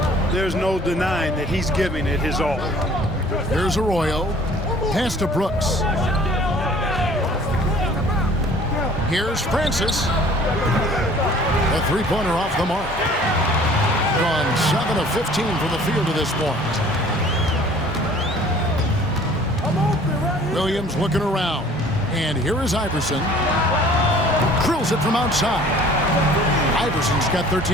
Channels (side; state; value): both; normal; correlation 0.52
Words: there's no denying that he's giving it his all. Here's Arroyo. Pass to Brooks. Here's Francis. A 3-pointer off the mark. Gone 7 of 15 from the field to this point. Williams looking around. And here is Iverson. Drills it from outside. Iverson's got